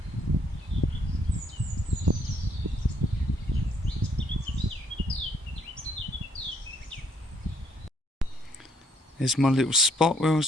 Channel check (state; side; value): normal; both; correlation 0.69